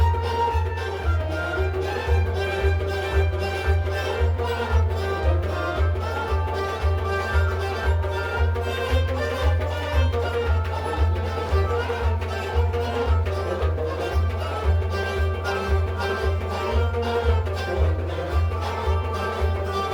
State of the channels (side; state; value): both; identical; correlation 1.00